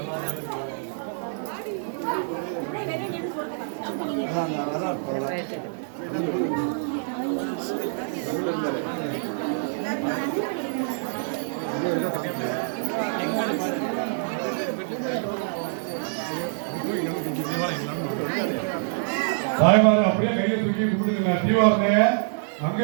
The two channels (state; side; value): silent; left; digital silence